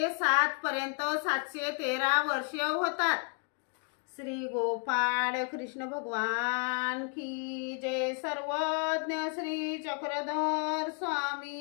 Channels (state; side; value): quieter; right; 38.7 dB